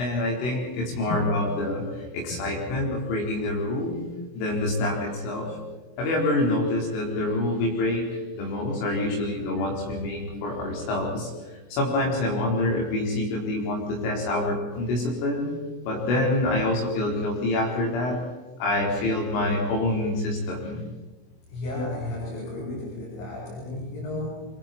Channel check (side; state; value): right; late; 24 ms